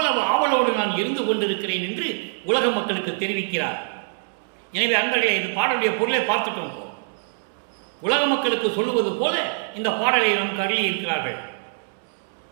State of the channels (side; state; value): left; silent; digital silence